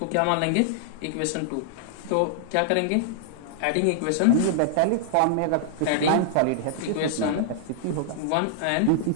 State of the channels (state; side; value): different; both; correlation -0.01